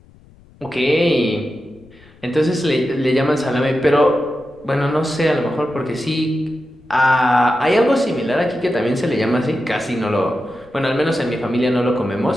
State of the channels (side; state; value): left; noise; rumble, 26 dB below the sound